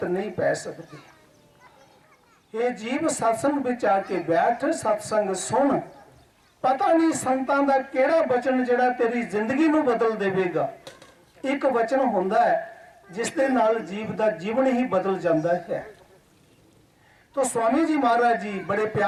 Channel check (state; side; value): identical; both; correlation 1.00